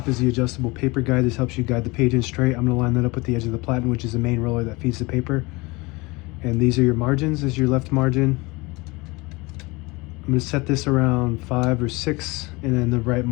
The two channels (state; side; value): quieter; right; 24.3 dB